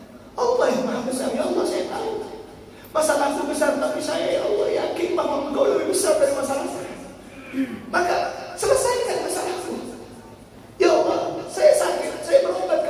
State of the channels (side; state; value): both; identical; correlation 1.00